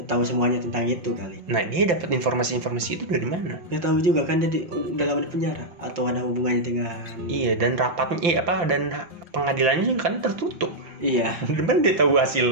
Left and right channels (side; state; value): left; late; 5.8 ms